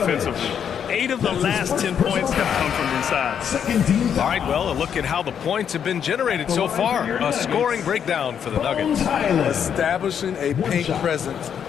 8 of the last 10 points have come from inside. All right, well, a look at how the points have been generated so far. A scoring breakdown for the Nuggets. Establishing a paint presence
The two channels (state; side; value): quieter; right; 8.2 dB